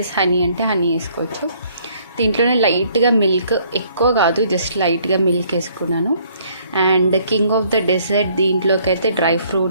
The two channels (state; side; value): inverted; both; correlation -0.63